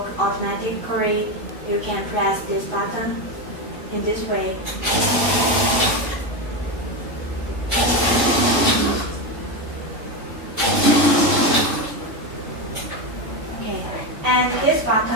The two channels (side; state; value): both; normal; correlation 0.14